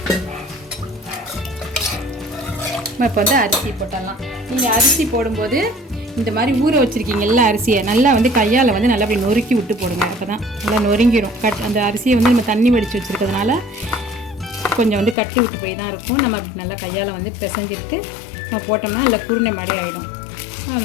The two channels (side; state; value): right; drops out; at 15.2 s